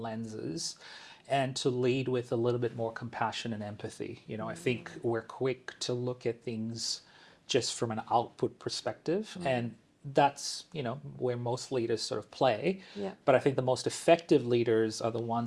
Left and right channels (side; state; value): both; identical; correlation 1.00